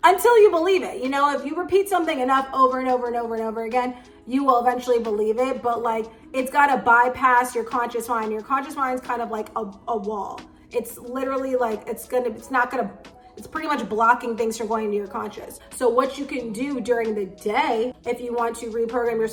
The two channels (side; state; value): both; identical; correlation 1.00